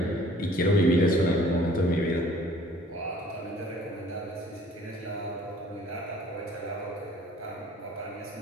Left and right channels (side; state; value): both; normal; correlation 0.54